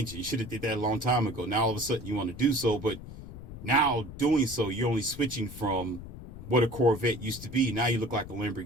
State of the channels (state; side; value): noise; left; rumble, 13 dB below the sound